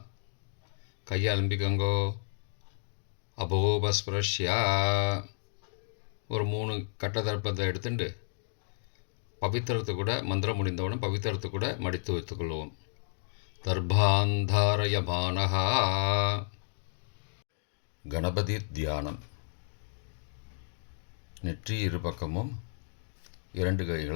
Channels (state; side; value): silent; right; digital silence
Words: கையை அலம்பிக்கோங்கோ. அபோபஸ்பிரஷ்யா. ஒரு 3 கட்ட தர்ப்பத்தை எடுத்துட்டு பவித்திரத்தை கூட மந்திரம் முடிந்தவுடன் பவித்திரத்தை கூட மடித்து வைத்துக்கொள்வோம். தர்பாந்தாரயமானஹா. கணபதி தியானம். நெற்றி இரு பக்கமும் 2